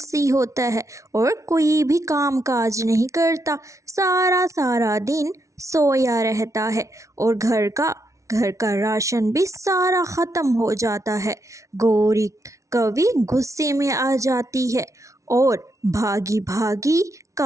होता है और कोई भी काम काज नहीं करता। सारा सारा दिन सोया रहता है और घर का राशन भी सारा ख़त्म हो जाता है। गौरी कवि गुस्से में आ जाती है और भागी भागी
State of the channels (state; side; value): late; left; 0.15 ms